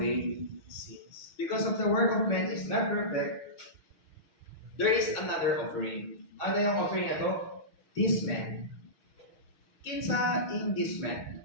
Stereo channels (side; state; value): right; late; 6.2 ms